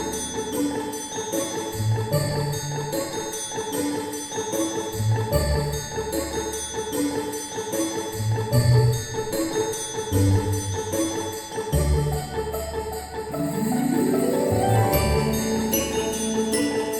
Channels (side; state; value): both; identical; correlation 1.00